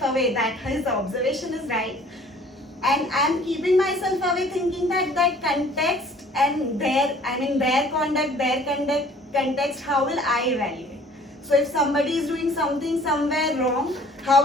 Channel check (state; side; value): normal; both; correlation 0.53